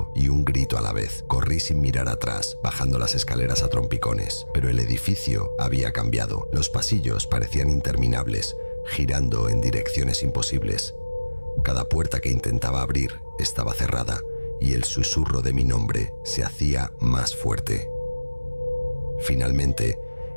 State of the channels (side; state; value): both; inverted; correlation -1.00